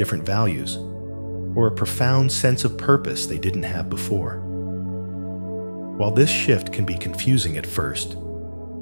values, or a profound sense of purpose they didn't have before. While this shift can be confusing at first,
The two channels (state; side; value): inverted; both; correlation -1.00